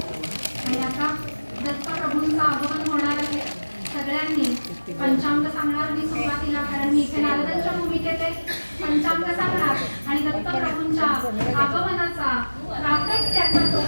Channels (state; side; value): inverted; both; correlation -1.00